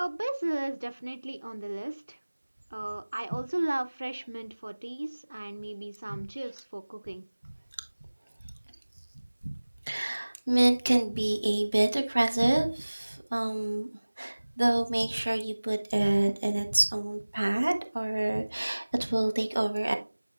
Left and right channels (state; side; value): inverted; both; correlation -1.00